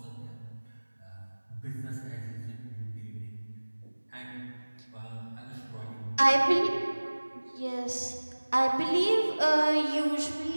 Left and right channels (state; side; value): inverted; both; correlation -1.00